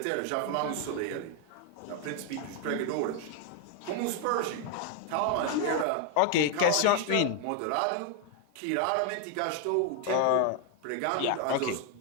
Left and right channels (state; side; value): different; both; correlation 0.00